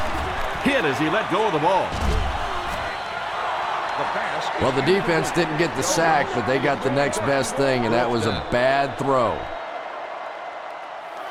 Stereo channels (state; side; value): identical; both; correlation 1.00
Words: Hit as he let go of the ball. The pass. Well, the defense didn't get the sack, but they got the next best thing, and that was a bad throw.